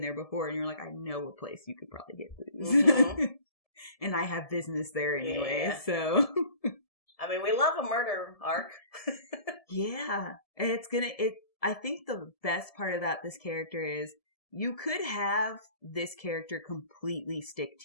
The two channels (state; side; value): late; right; 1.7 ms